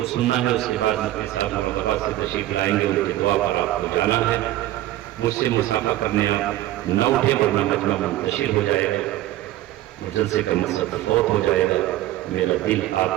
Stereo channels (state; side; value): quieter; left; 14.8 dB